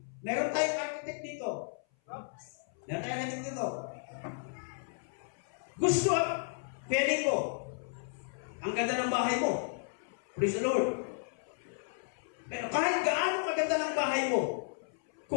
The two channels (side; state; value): right; silent; 55 dB below the other